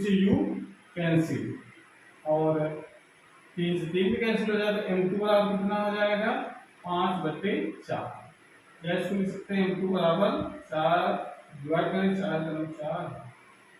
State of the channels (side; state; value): both; identical; correlation 1.00